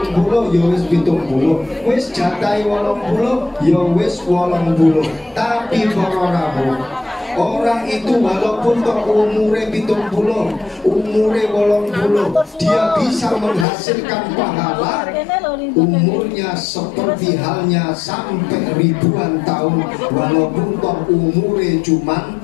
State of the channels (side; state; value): right; drops out; at 13.7 s